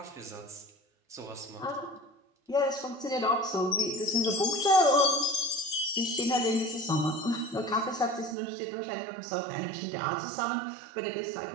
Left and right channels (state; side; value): drops out; left; at 8.3 s